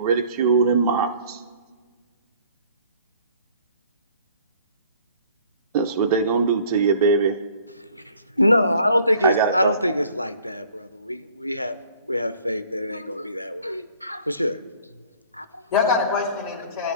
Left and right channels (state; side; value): inverted; both; correlation -0.54